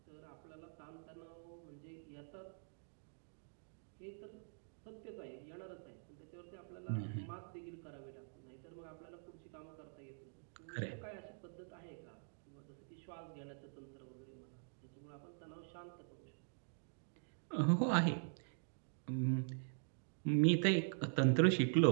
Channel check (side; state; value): left; silent; digital silence